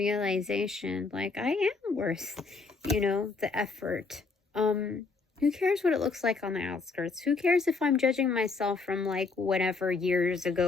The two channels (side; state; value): right; quieter; 4.2 dB